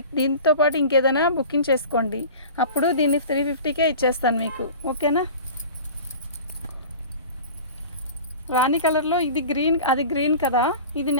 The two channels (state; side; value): inverted; both; correlation -0.38